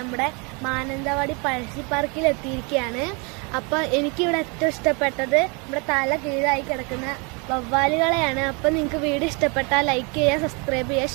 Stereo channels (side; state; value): left; quieter; 31.8 dB